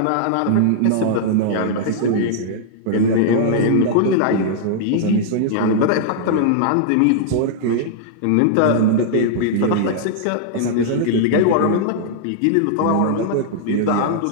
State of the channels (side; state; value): both; different; correlation -0.02